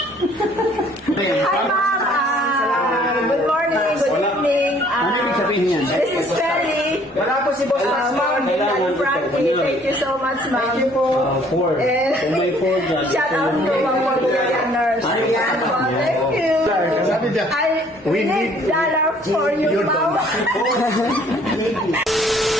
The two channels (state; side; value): normal; both; correlation 0.59